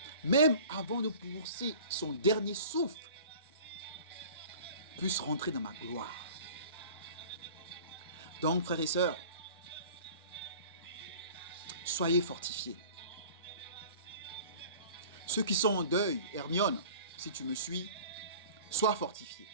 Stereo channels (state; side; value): inverted; both; correlation -0.44